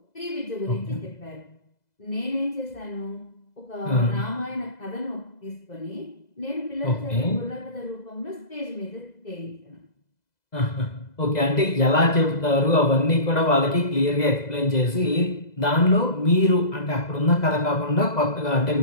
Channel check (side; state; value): right; late; 2.0 ms